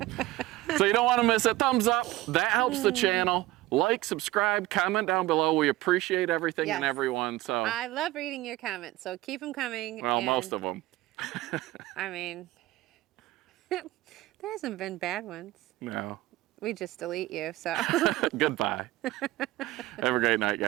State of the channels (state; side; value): quieter; left; 17.4 dB